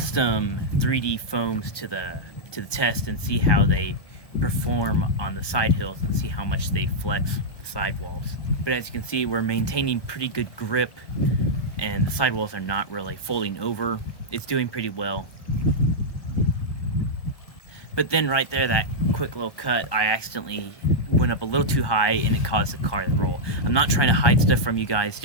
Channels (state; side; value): late; right; 1.2 ms